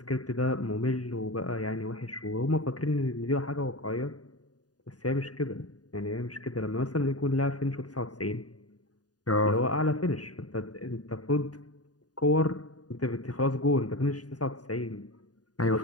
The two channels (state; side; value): late; right; 0.68 ms